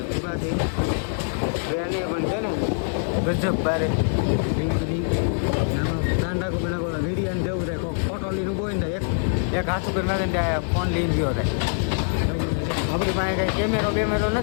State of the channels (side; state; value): right; silent; 59 dB below the other